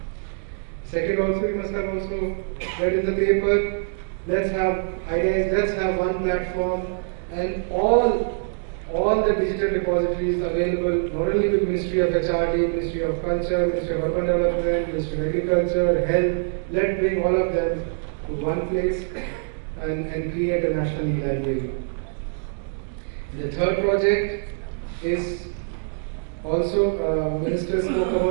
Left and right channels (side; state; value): left; silent; digital silence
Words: Second, also you must have also read in the paper, let's have one platform and all the digital depositories available, not only with Ministry of HRD, Ministry of Culture, Ministry of Urban Development, Ministry of Agriculture, Health. Let's bring all of them to one place and create a national e-library. And the third project is also, Minister spoke